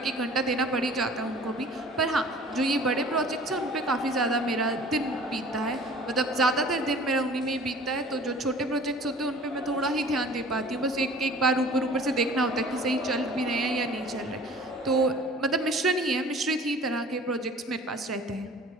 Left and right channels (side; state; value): both; normal; correlation 0.47